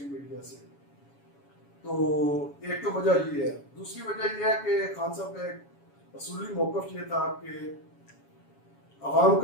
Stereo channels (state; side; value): late; right; 7.2 ms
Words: میڈیا سے. تو ایک تو وجہ یہ ہے. دوسری وجہ یہ ہے کہ خان صاحب کا ایک اصولی موقف یہ تھا کہ عوام